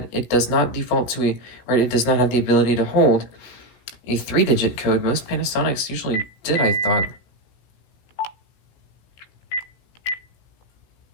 it does not default to or it does not have the ability to hold a 3-digit code. Most Panasonics usually did, I thought.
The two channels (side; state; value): right; late; 16 ms